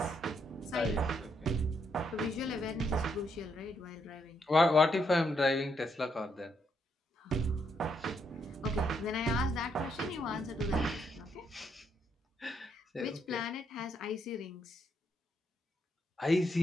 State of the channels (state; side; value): normal; both; correlation 0.76